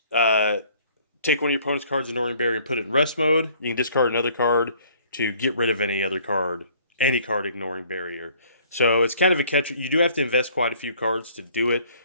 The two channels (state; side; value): inverted; both; correlation -0.57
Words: take one of your opponent's cards, ignoring barrier, and put it in rest mode. You can discard another card to get rid of any card ignoring barrier. So it's kind of a catch. You do have to invest quite a few cards to do it,